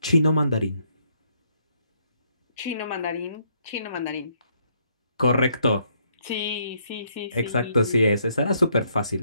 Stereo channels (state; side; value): inverted; both; correlation -0.71